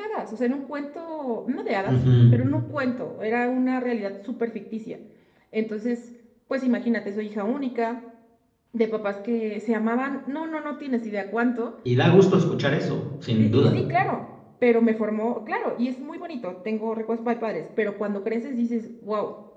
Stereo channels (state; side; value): identical; both; correlation 1.00